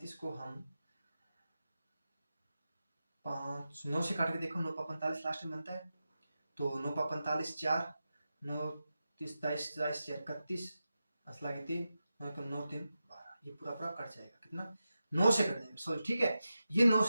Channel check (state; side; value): inverted; both; correlation -0.91